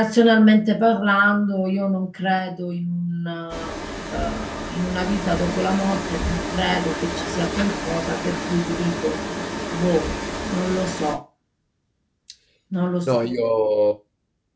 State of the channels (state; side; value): identical; both; correlation 1.00